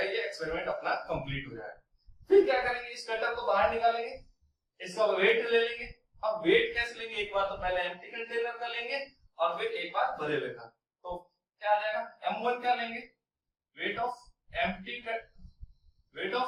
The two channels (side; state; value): both; identical; correlation 1.00